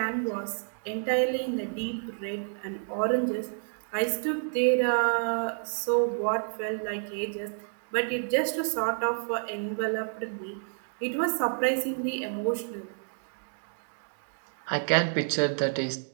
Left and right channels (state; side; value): silent; left; digital silence